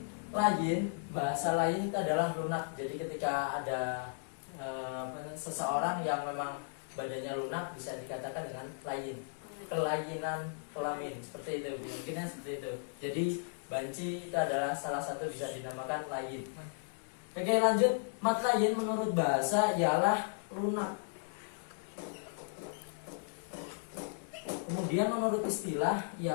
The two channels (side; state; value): right; silent; digital silence